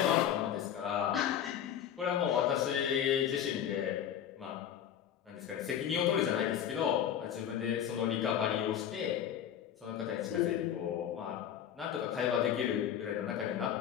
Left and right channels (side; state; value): right; quieter; 9.6 dB